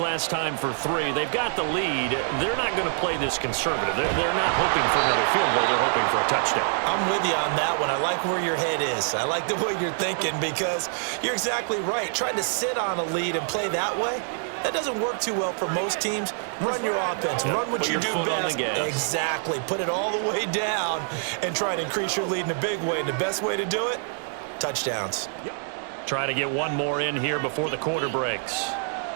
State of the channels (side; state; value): left; silent; 60 dB below the other